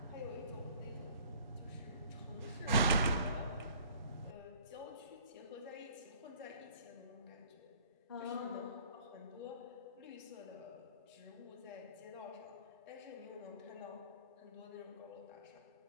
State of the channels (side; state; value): both; inverted; correlation -0.54